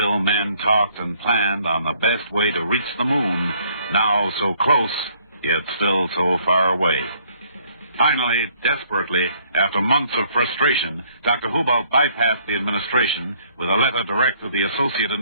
men talked and planned on the best way to reach the moon, now so close, yet still so far away. Finally, desperately, after months of frustration, Dr. Hubolt bypassed the administration with a letter direct to the Associate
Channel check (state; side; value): inverted; both; correlation -0.64